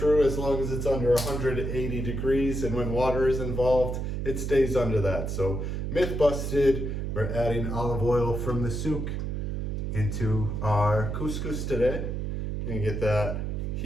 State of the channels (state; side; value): noise; right; hum, 2 dB below the sound